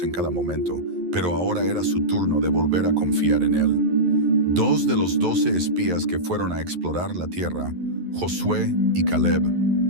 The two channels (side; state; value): left; late; 11 ms